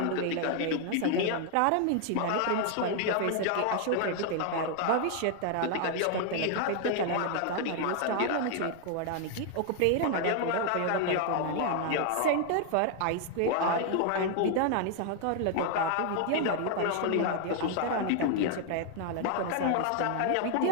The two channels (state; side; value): different; both; correlation 0.00